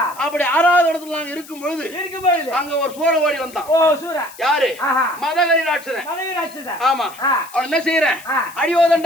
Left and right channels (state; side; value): noise; left; hiss, 19 dB below the sound